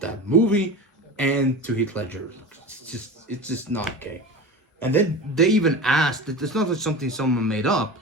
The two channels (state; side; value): normal; both; correlation 0.30